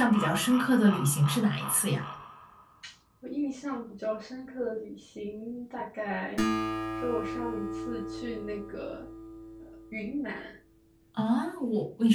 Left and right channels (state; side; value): identical; both; correlation 1.00